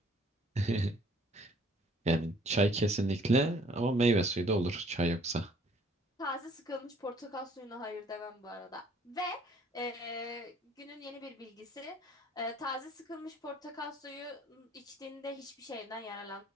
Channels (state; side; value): normal; both; correlation 0.59